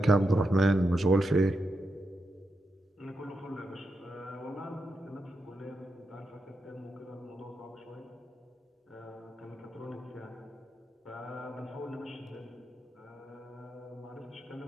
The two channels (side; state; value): both; normal; correlation 0.86